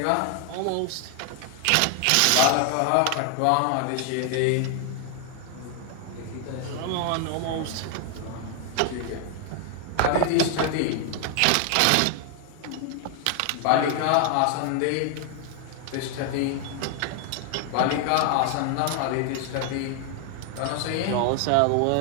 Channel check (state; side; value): different; both; correlation 0.00